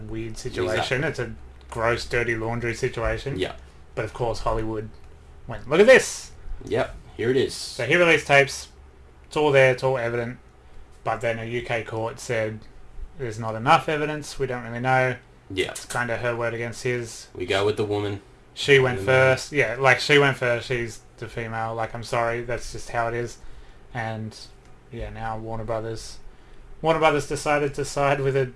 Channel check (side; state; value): both; identical; correlation 1.00